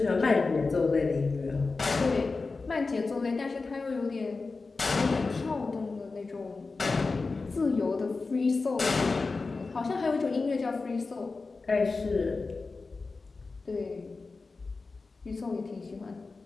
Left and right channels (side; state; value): right; quieter; 4.0 dB